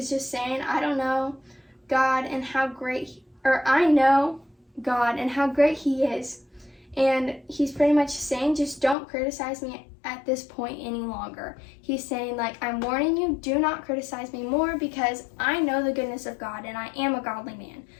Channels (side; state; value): right; drops out; at 9.0 s